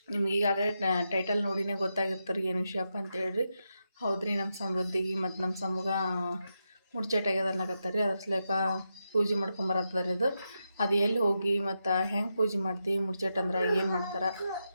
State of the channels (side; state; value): both; inverted; correlation -0.86